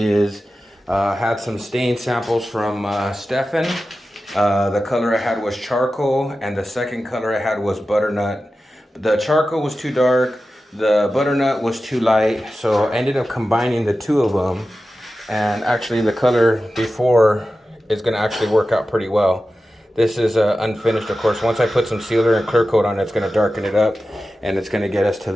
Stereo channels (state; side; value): normal; both; correlation 0.93